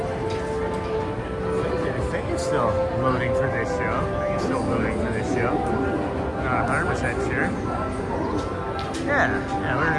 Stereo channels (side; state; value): both; identical; correlation 1.00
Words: I think it's still loading for this show. I think it's still loading for this show. Not 100% sure. Yeah, we're